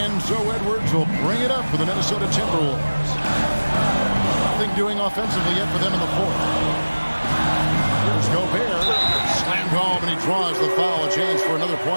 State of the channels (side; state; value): both; inverted; correlation -1.00